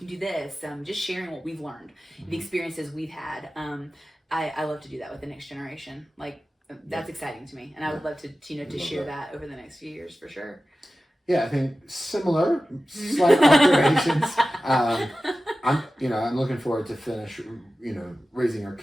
do this. Just sharing what we've learned, the experiences we've had. I love to do that with the next generation. Like that's exciting to me, and I would love to to share that over the next few years for sure. Yeah, I think similar, slight alterations. I'm looking forward to finish, raising our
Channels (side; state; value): both; normal; correlation 0.95